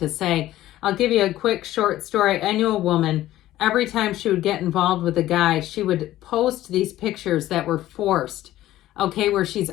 say. I'll give you a quick short story. I knew a woman, every time she would get involved with a guy, she would post these pictures that were forced. Okay, where she's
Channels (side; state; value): right; quieter; 14.6 dB